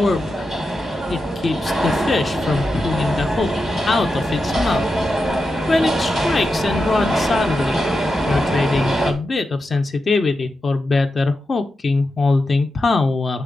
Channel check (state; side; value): normal; both; correlation 0.89